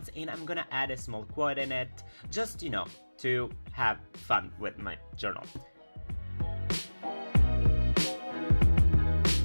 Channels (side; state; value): both; inverted; correlation -1.00